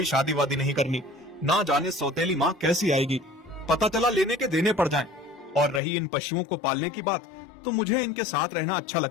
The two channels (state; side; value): drops out; right; at 5.8 s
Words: शादी वादी नहीं करनी। ना जाने सौतेली माँ कैसी आएगी, पता चला लेने के देने पड़ जाएं। और रही इन पशुओं को पालने की बात, तो मुझे इनके साथ रहना अच्छा